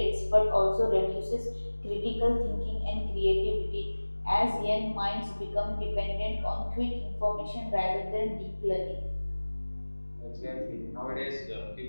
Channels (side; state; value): both; inverted; correlation -1.00